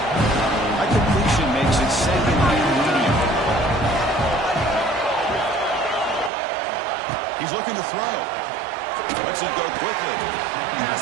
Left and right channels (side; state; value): left; drops out; at 6.3 s